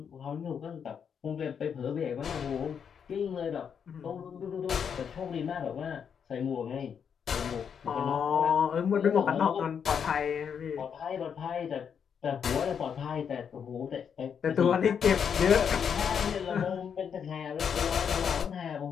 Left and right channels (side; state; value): right; quieter; 7.3 dB